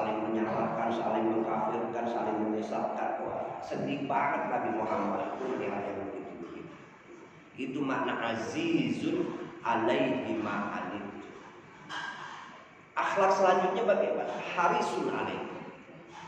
menyalahkan, saling mengkafirkan, saling menyesatkan. Wah, sedih banget Nabi Muhammad itu melihat yang begitu. Itu makna azizun alaihi ma'anittu. Akhlak selanjutnya bagaimana? Harisun alaikum.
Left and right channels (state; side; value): identical; both; correlation 1.00